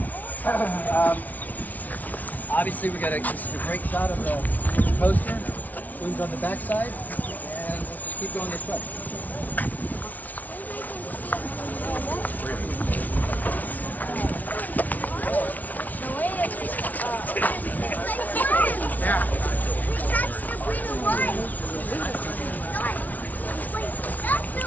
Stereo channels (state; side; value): late; right; 0.076 ms